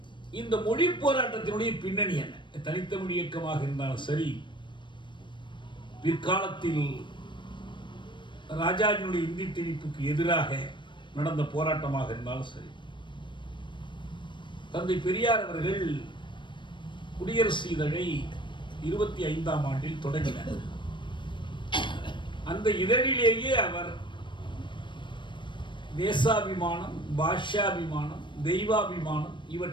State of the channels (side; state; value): right; late; 0.23 ms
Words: இந்த மொழி போராட்டத்தினுடைய பின்னணி என்ன? தனித்தமிழ் இயக்கமாக இருந்தாலும் சரி, பிற்காலத்தில் ராஜாஜினுடைய இந்தி திணிப்புக்கு எதிராக நடந்த போராட்டமாக இருந்தாலும் சரி, தந்தை பெரியார் அவர்கள் குடியரசு இதழை 25ஆம் ஆண்டில் தொடங்கினார். அந்த இதழிலேயே அவர் தேசாபிமானம், பாஷாபிமானம், தெய்வாபிமானம்